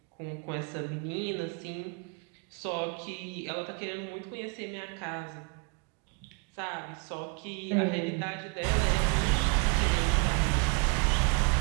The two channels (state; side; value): quieter; left; 33.9 dB